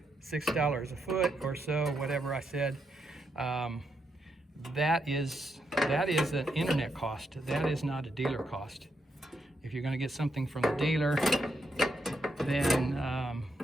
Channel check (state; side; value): normal; both; correlation 0.80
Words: $6 a foot or so, whatever I said, that is an internet cost. That is not a dealer cost. If you're going to get something from the dealer, then